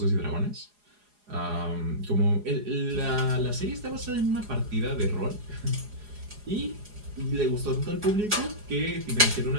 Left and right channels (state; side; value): late; left; 4.8 ms